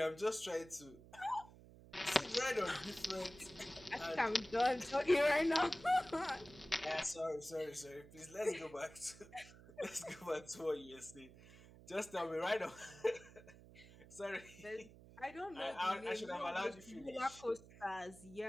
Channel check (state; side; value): noise; right; hum, 20 dB below the sound